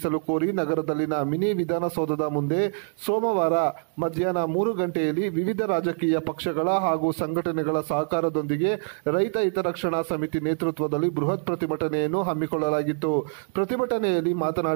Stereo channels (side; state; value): left; silent; 62 dB below the other